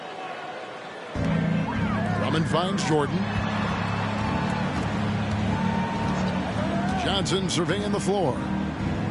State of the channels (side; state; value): both; identical; correlation 1.00